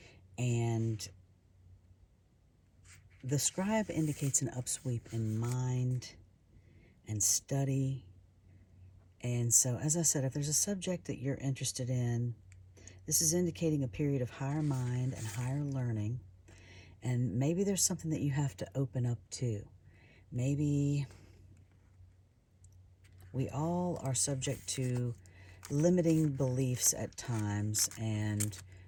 And the Scribe indicates an upsweep in mind and study. And so, as I said, if there's a subject that you're interested in, this is indicating a period of higher mind and higher learning. And maybe there's something that you have to open up to. Maybe we all are subject to limiting beliefs at times, and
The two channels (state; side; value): identical; both; correlation 1.00